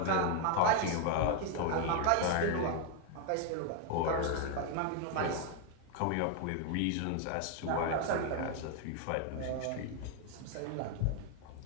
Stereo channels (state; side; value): different; both; correlation 0.01